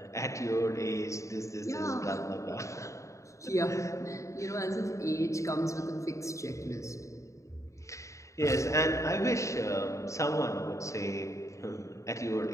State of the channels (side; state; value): right; late; 0.15 ms